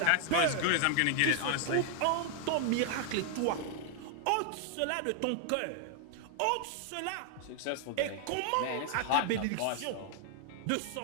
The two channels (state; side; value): different; both; correlation 0.00